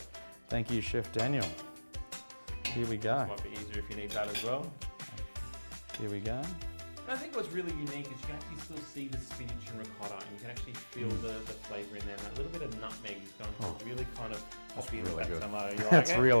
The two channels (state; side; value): inverted; both; correlation -1.00